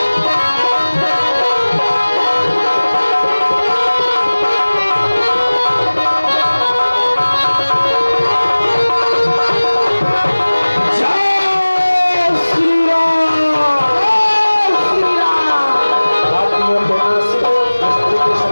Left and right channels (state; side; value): inverted; both; correlation -1.00